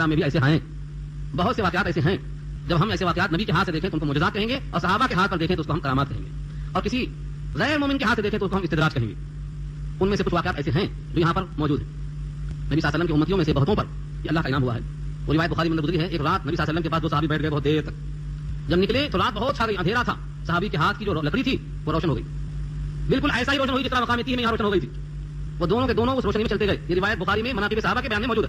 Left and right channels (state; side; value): identical; both; correlation 1.00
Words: میں بھی ایسے ہیں, بہت سے واقعات ایسے ہیں. جب ہم ایسے واقعات نبی کے ہاتھ سے دیکھیں تو ان کو معجزات کہیں گے, اور صحابہ کے ہاتھ پر دیکھیں تو اس کو ہم کرامات کہیں گے, اور کسی غیر مومن کے ہاتھ سے دیکھیں تو اس کو ہم استدراج کہیں گے. ان میں سے کچھ واقعات ایسے ہیں جو یہاں پر موجود ہیں. نبی صلی اللہ علیہ وسلم کی امتیوں میں سے بہتوں پر یہ اللہ کا انعام ہوا ہے. وہ روایت بخاری میں گزری ہے, ایک رات نبی صلی اللہ علیہ وسلم کے پاس دو صحابی بیٹھ گئے بہت دیر تک. جب نکلے تو رات بہت چھا گئی, اندھیرا تھا. صحابی کے ہاتھ کی جو لکڑی تھی وہ روشن ہو گئی, بالکل ایسا ہی روشن ہوئی جس طرح مقام تیہ میں یہاں روشن ہو گئی تھی. وہ دونوں کے دونوں اس روشنی میں چلتے گئے. یہ روایت بخاری میں مناقب صحابہ کے بیان میں موجود